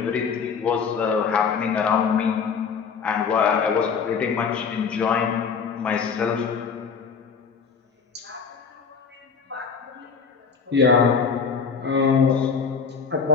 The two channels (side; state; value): right; quieter; 5.8 dB